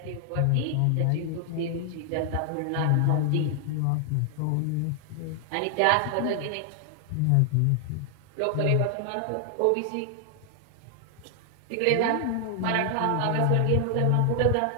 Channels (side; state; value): both; different; correlation 0.00